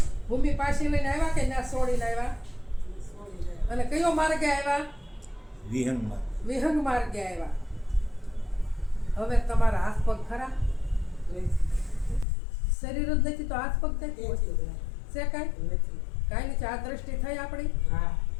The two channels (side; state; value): right; drops out; at 12.2 s